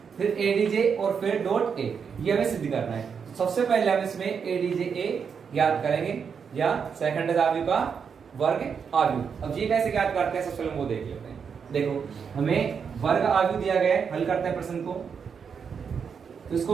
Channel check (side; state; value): left; quieter; 6.5 dB